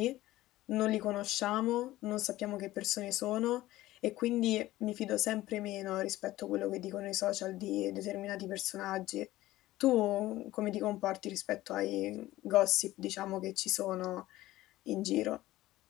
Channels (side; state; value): right; quieter; 16.3 dB